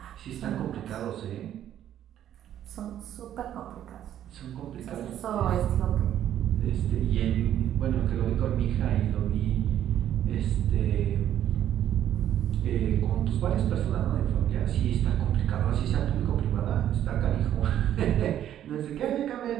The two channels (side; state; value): left; quieter; 11.1 dB